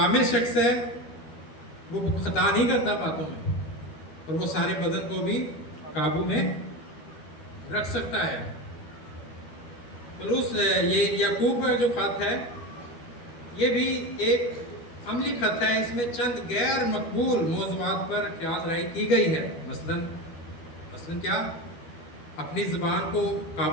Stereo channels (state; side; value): late; right; 12 ms